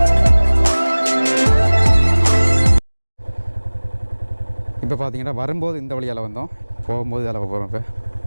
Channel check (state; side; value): inverted; both; correlation -1.00